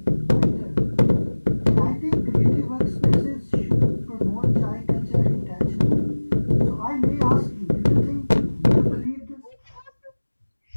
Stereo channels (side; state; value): both; inverted; correlation -1.00